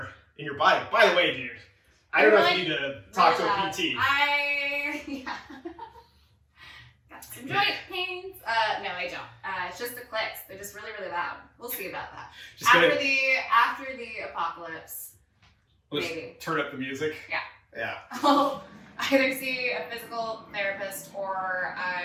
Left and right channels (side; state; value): both; identical; correlation 1.00